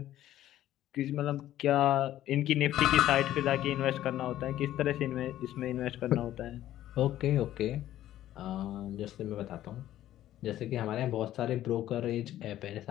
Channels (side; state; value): right; quieter; 13.1 dB